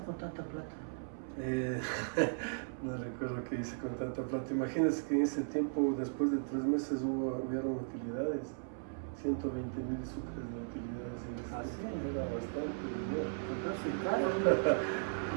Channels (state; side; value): silent; left; 53 dB below the other